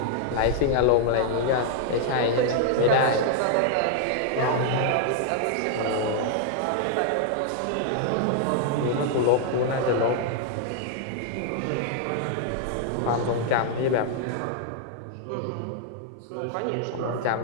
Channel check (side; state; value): both; different; correlation -0.01